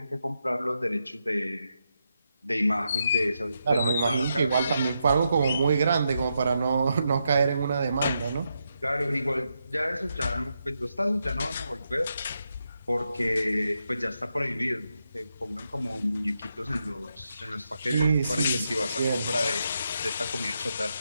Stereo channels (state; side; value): inverted; both; correlation -0.84